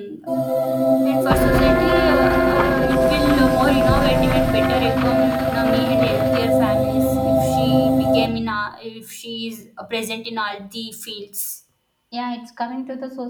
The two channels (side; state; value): both; identical; correlation 1.00